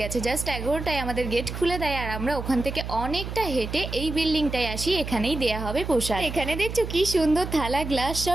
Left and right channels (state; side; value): noise; right; hum, 7 dB below the sound